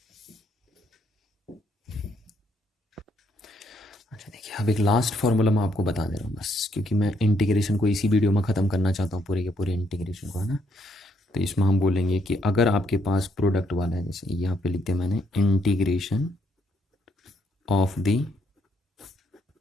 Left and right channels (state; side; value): normal; both; correlation 0.72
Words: अच्छा देखिए अब एक लास्ट फार्मूला मैं आपको बता दे रहा हूँ बस, क्योंकि मैं इंटीग्रेशन को इसी वीडियो में ख़त्म करना चाहता हूँ, पूरे के पूरे इंटीग्रेशन को, है ना। तो इसमें हम बोलेंगे कि अगर आपके पास प्रोडक्ट वाला है, जैसे यहाँ पे लिख दिया मैंने integration of the